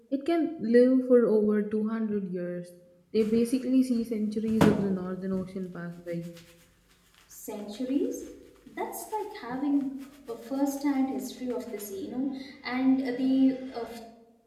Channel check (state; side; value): identical; both; correlation 1.00